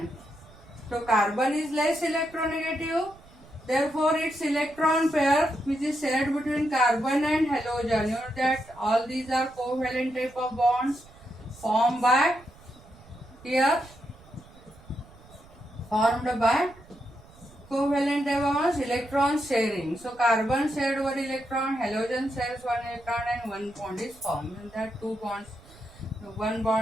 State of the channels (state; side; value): noise; right; rumble, 23 dB below the sound